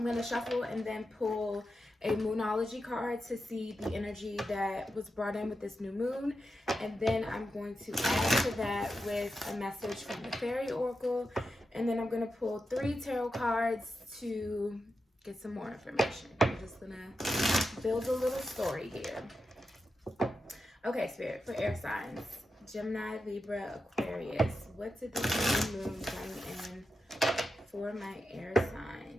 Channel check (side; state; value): both; normal; correlation 0.88